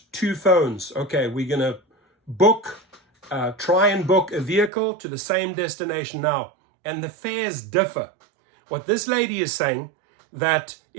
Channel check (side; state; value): left; drops out; at 4.7 s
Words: two phones. Okay, we're going to try and book a vehicle to the same destination now. And the fares differ. What this lady is saying, that